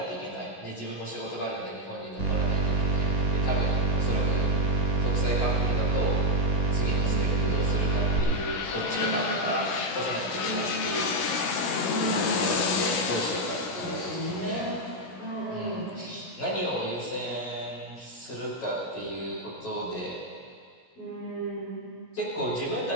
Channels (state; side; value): late; right; 16 ms